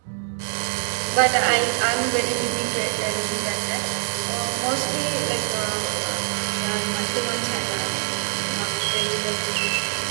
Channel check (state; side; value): silent; left; digital silence